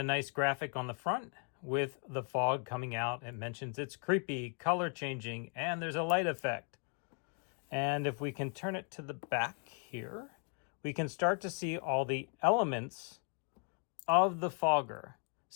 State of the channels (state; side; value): quieter; right; 38.6 dB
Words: nice graphic on the front with the fog coming out. It mentions it's creepy, color changing, and there's a light effect. And if we can turn it to the back here, we can start to see all the elements of the fogger.